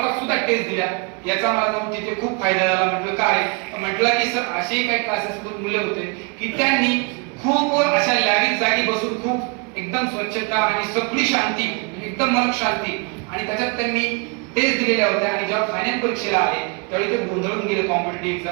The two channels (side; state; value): left; quieter; 33.9 dB